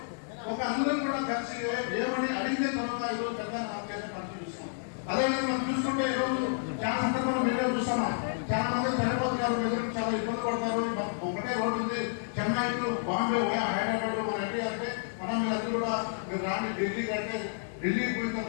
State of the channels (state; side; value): silent; right; digital silence